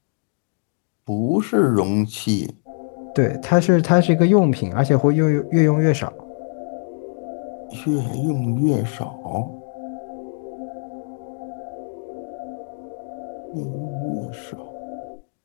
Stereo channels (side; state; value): right; silent; digital silence